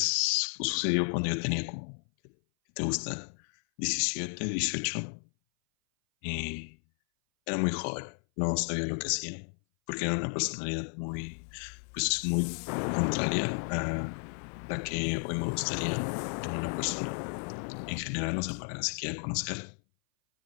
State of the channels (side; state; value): right; silent; 56 dB below the other